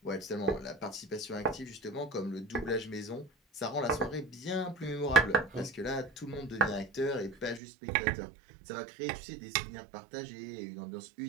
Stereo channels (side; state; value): left; drops out; at 7.6 s